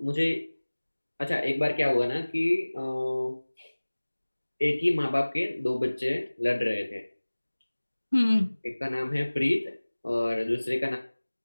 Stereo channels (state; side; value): inverted; both; correlation -1.00